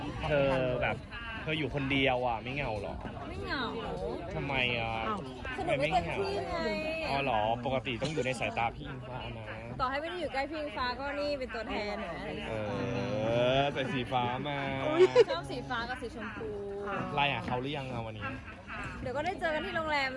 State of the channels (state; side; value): identical; both; correlation 1.00